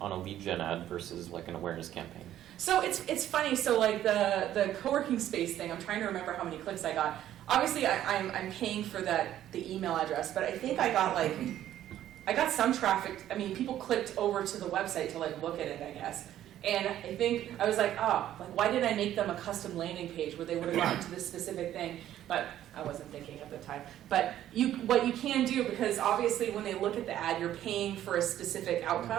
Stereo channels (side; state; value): left; quieter; 12.1 dB